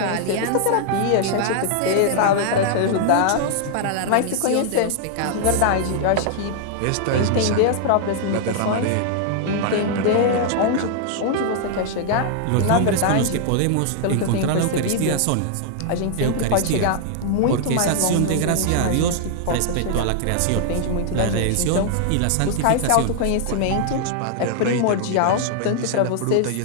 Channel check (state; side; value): different; both; correlation -0.01